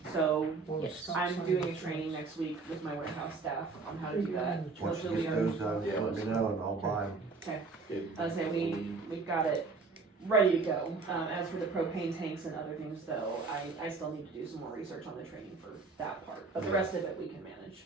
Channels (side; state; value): left; quieter; 4.2 dB